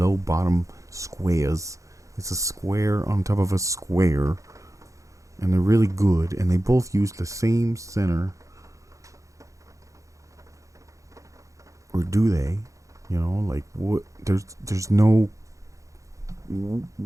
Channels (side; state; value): left; late; 0.15 ms